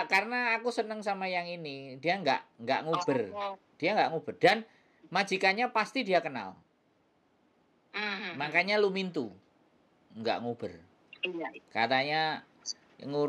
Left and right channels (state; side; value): identical; both; correlation 1.00